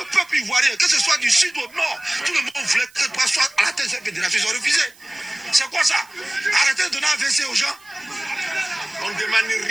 peuple ivoirien, que ce soit du sud au nord, tout le monde voulait que toi sois à la tête de cette fédération. Ils ont refusé. C'est quoi ça? Arrêtez de donner un WC aux gens. On ne demande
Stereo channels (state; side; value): noise; right; hiss, 26 dB below the sound